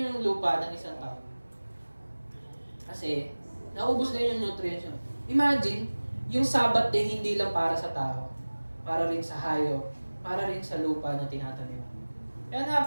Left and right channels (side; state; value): both; inverted; correlation -1.00